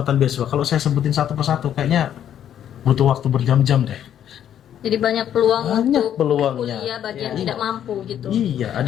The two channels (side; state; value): right; quieter; 10.1 dB